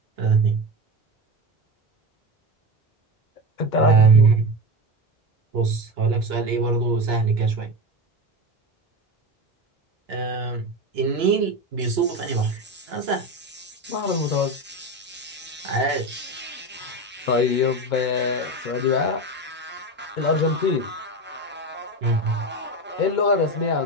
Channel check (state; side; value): normal; both; correlation 0.21